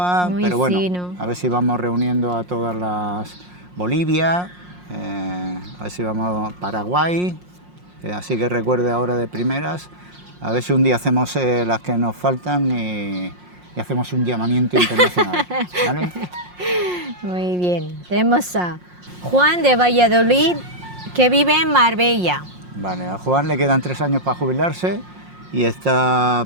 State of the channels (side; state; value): left; late; 5.6 ms